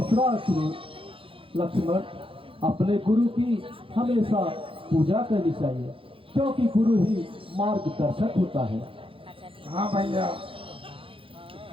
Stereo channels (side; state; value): left; late; 0.26 ms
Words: सुनो लक्ष्मण, अपने गुरु की हमेशा पूजा करनी चाहिए क्योंकि गुरु ही मार्गदर्शक होता है। हाँ भैया।